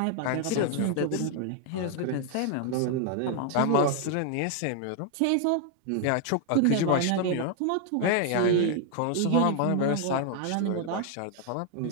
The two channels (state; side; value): different; both; correlation 0.00